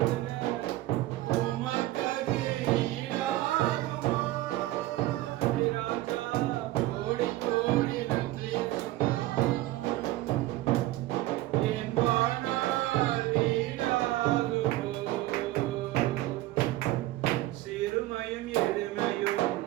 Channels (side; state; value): left; quieter; 16.7 dB